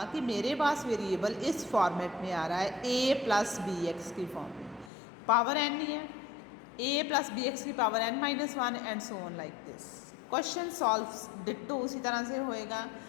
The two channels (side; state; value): right; drops out; at 4.9 s